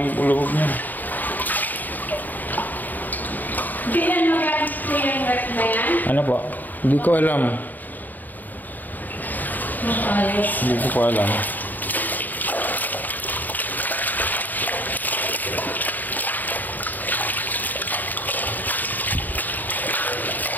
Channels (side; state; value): right; late; 0.086 ms